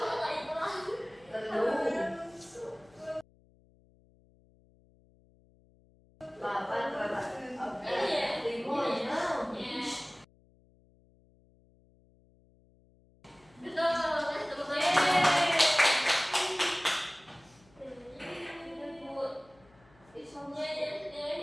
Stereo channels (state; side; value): noise; left; hum, 30 dB below the sound